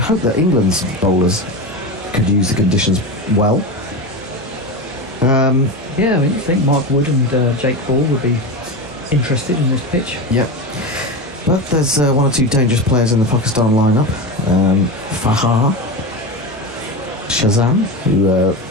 that England's bowlers could use the conditions well. Yeah, I mean, you think Mark Wood and Jake Ball would be interested in this pitch? Yep. But there's one or two dangerous players in the Pakistan lineup. Fahar Shazam, who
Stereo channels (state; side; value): normal; both; correlation 0.21